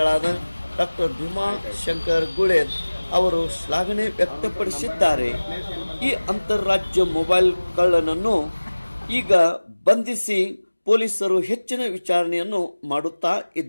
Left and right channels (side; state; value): both; inverted; correlation -1.00